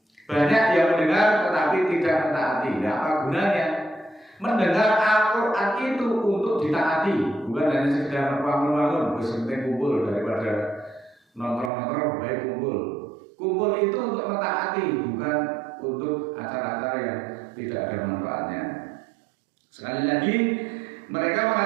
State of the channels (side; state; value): left; drops out; at 11.7 s